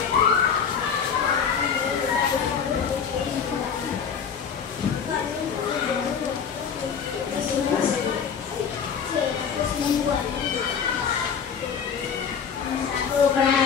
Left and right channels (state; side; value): quieter; right; 6.9 dB